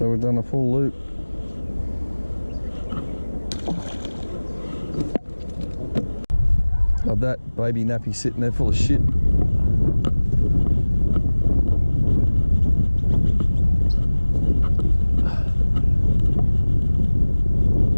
we've done a full loop. Of that baby nappy sitting there full of shit.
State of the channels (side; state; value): both; inverted; correlation -1.00